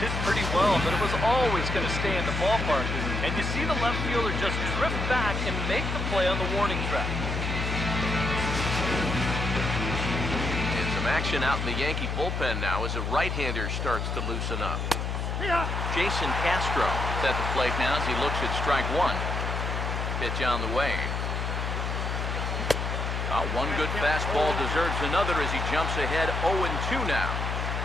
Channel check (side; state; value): left; noise; hum, 2 dB below the sound